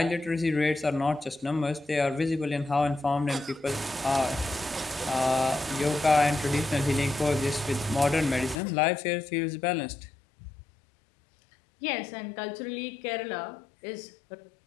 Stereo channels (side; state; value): right; drops out; at 8.6 s